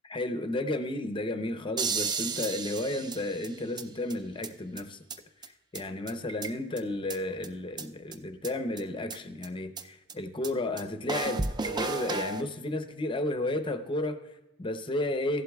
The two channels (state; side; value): normal; both; correlation 0.42